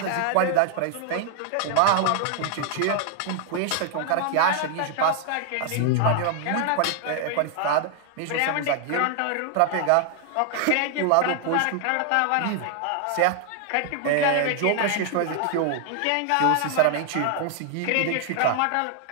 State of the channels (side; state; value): both; different; correlation 0.00